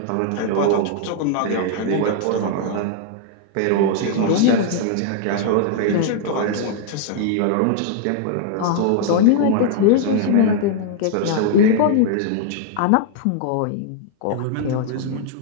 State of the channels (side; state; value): both; different; correlation 0.00